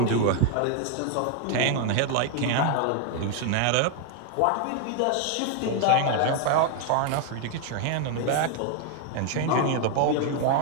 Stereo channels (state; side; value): different; both; correlation 0.00